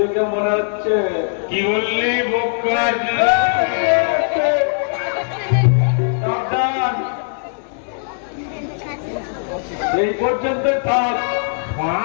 মনে হচ্ছে। কি বললি বোকা? এই পর্যন্ত থাক।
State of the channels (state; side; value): silent; right; digital silence